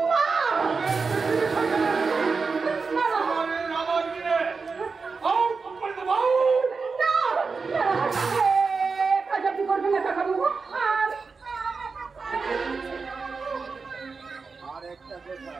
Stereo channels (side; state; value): left; quieter; 4.7 dB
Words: আমার দিনে কাজাপি করবেন না কাকা বাবু।